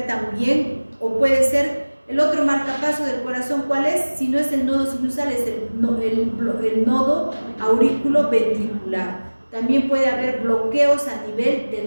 también, o puede ser el otro marcapaso del corazón, ¿cuál es? Si no es el nodo sinusal, es el nodo aurículo-ventricular. También puede haber bloqueos a nivel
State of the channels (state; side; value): inverted; both; correlation -1.00